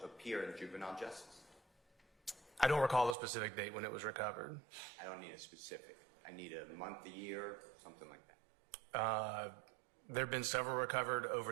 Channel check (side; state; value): left; drops out; at 3.2 s